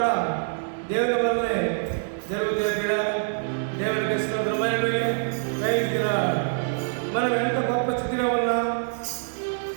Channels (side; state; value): left; silent; digital silence